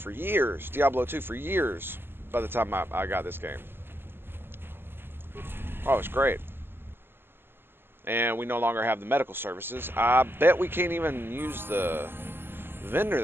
years, Diablo 2 for years by the time I got this game. Oh, it's great. And we no longer have the medical services. I bet we can't even use the vendor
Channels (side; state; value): left; late; 0.10 ms